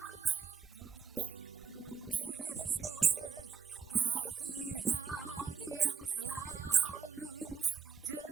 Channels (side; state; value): left; quieter; 6.1 dB